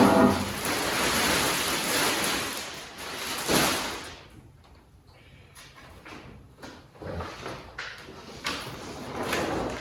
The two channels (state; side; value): identical; both; correlation 1.00